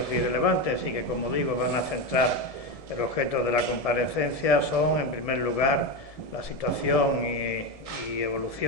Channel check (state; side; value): late; right; 1.7 ms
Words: y relevantes y que, como digo, van a centrar el objeto de la comparecencia son, en primer lugar, la situación y